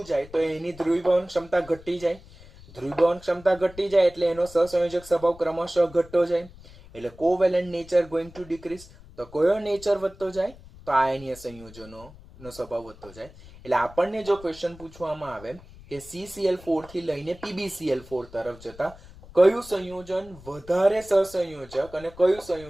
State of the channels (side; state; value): left; noise; rumble, 20 dB below the sound